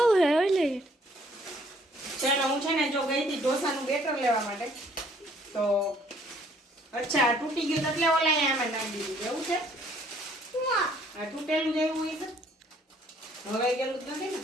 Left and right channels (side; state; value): both; normal; correlation 0.62